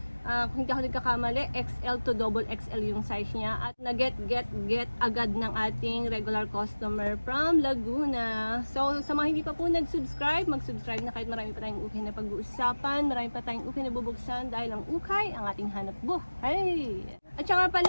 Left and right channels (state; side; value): inverted; both; correlation -1.00